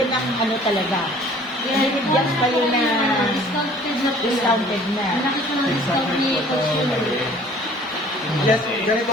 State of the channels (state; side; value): normal; both; correlation 0.52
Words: ng ano talaga. Binigyan kayo na discounted na. Yes, ganito